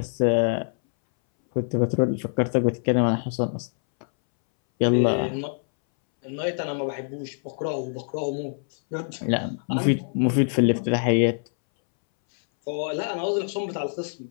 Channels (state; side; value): silent; right; 61 dB below the other